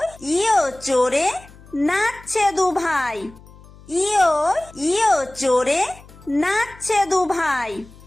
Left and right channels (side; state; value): left; noise; hum, 22 dB below the sound